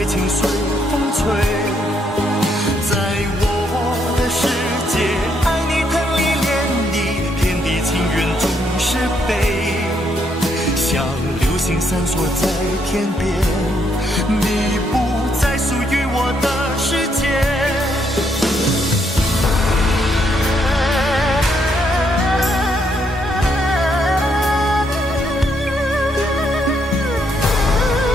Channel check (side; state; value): both; normal; correlation 0.74